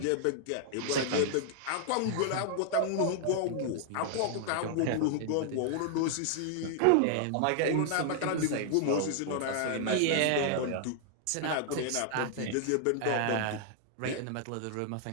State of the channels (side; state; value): both; different; correlation 0.00